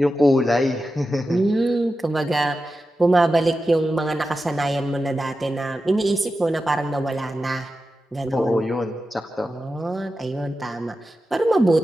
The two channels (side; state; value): both; normal; correlation 0.92